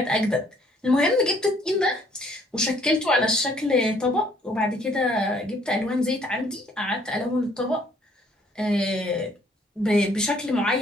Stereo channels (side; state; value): both; normal; correlation 0.62